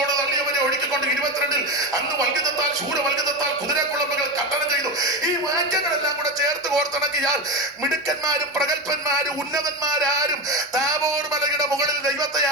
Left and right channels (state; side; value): normal; both; correlation 0.18